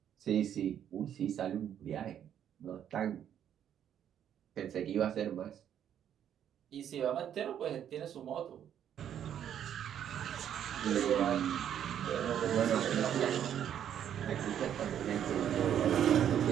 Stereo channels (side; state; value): left; quieter; 9.7 dB